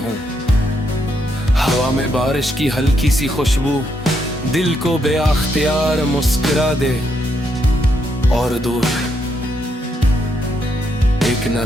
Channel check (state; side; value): normal; both; correlation 0.77